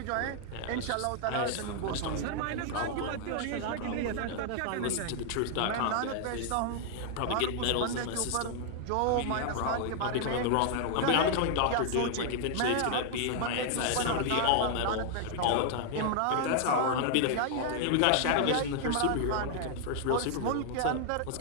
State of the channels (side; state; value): both; different; correlation 0.00